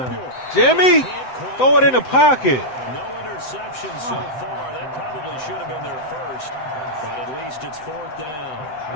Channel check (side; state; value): right; late; 7.8 ms